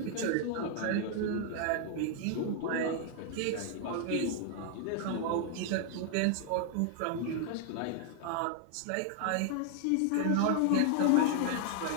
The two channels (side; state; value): both; different; correlation 0.00